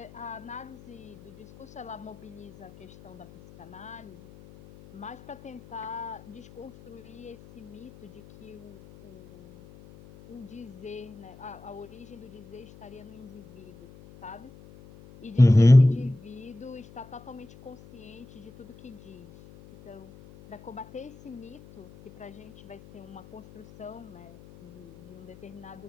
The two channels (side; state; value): left; noise; hum, 19 dB below the sound